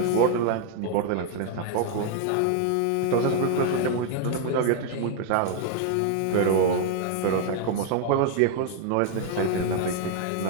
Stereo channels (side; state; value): both; different; correlation 0.00